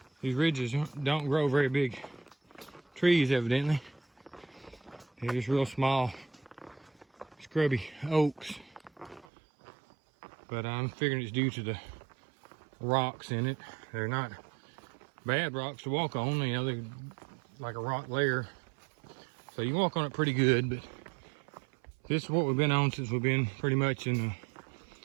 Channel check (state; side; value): drops out; left; at 9.2 s